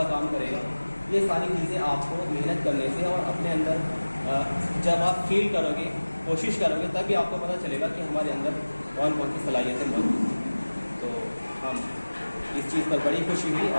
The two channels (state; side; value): inverted; both; correlation -1.00